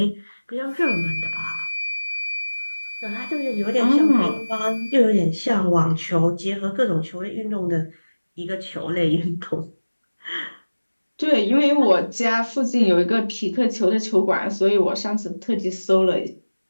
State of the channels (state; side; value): inverted; both; correlation -1.00